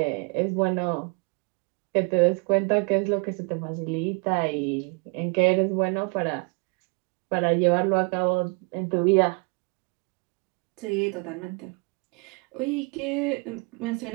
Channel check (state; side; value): quieter; left; 31.7 dB